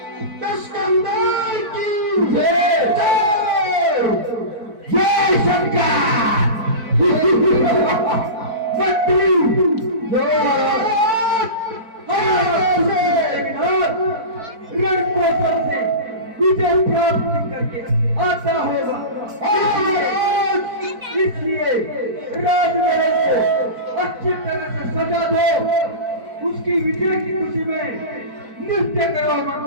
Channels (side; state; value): left; late; 4.5 ms